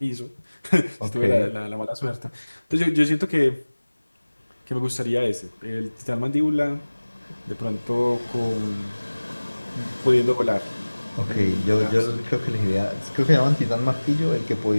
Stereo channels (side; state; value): both; inverted; correlation -1.00